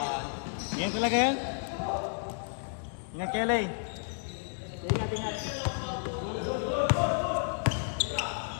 Yan talaga yan? Ingat kayo, Lay. Ingat.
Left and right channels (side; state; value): right; silent; digital silence